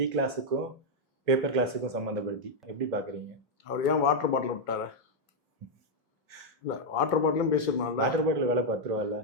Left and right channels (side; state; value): both; normal; correlation -0.02